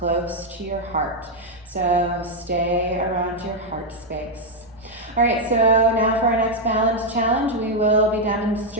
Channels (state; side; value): normal; both; correlation 0.00